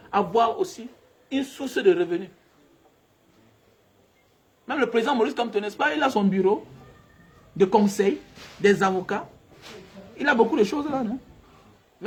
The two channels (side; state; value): both; identical; correlation 1.00